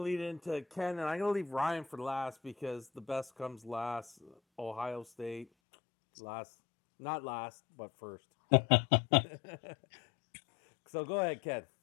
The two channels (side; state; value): right; drops out; at 5.5 s